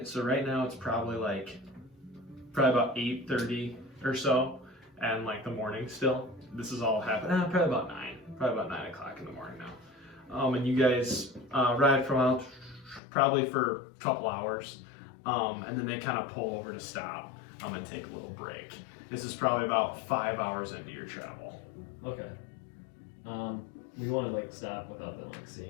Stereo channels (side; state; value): right; drops out; at 13.0 s